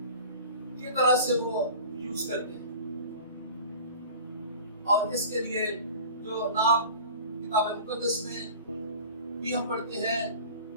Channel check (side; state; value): both; inverted; correlation -0.40